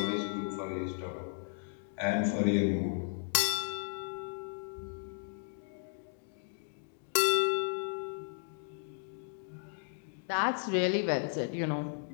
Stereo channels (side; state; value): right; silent; digital silence